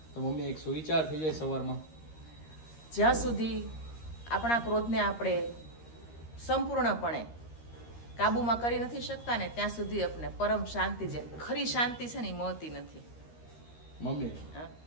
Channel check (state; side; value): late; right; 13 ms